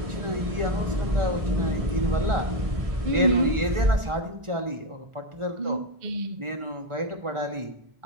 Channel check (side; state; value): left; late; 1.4 ms